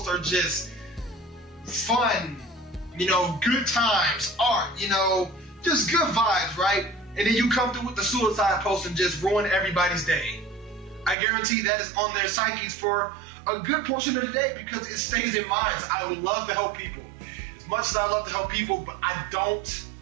are just fun, you know, good times, art, you know, just good vibes, right? And then you come through with the suicide post and just ruin everybody's day. I guarantee that is on their psyches for a good portion of the day because it stays in minds. I would love to help people. As much as I love to help people, but I don't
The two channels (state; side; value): drops out; left; at 11.2 s